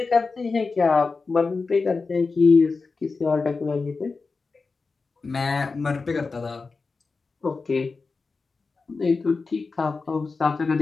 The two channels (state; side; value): quieter; right; 4.3 dB